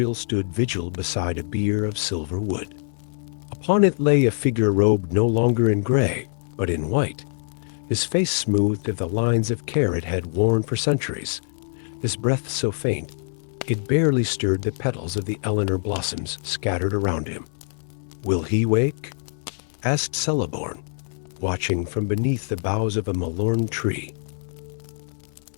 stood vigil beside a bier of silver wood. Upon it lay a figure robed no longer in gray, but in white, his face smoothed of the lines of care it had worn for centuries, his breath so faint it barely stirred the petals of the Eleanor blossoms scattered around him. "Will he wake?" asked Celeborn, watching from beneath the boughs of a Malorn tree.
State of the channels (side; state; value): right; silent; 62 dB below the other